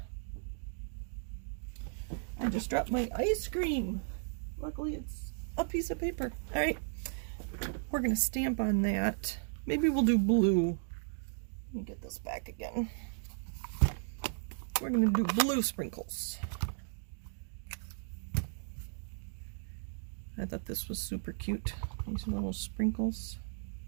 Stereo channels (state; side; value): silent; left; digital silence